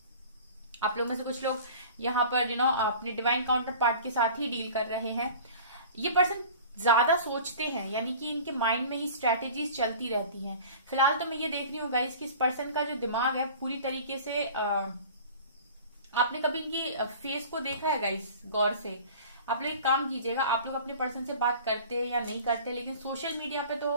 आप लोग में से कुछ लोग यहाँ पर अपने डिवाइन काउंटर पार्ट के साथ ही डील कर रहे हैं। ये पर्सन ज्यादा सोचते हैं, यानी कि इनके माइंड में ही स्ट्रैटेजीज चलती रहती हैं। फिलहाल तो मैं ये देख रही हूँ गाइस कि इस पर्सन का जो दिमाग है पूरी तरीके से आपने कभी इनकी फेस को देखा है गाइस गौर से? आप लोग एक काम कीजिएगा, आप लोग अपने पर्सन से बात करते हैं या नहीं करते, लेकिन सोशल मीडिया पे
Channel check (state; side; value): inverted; both; correlation -0.42